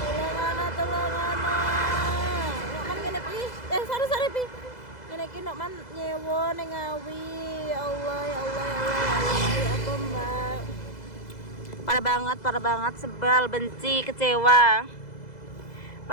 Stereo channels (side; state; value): right; late; 2.0 ms